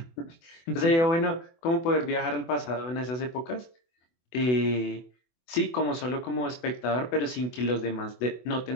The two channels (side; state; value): right; late; 24 ms